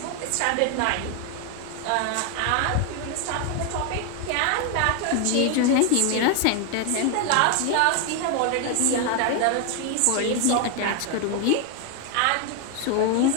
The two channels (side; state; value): both; different; correlation 0.01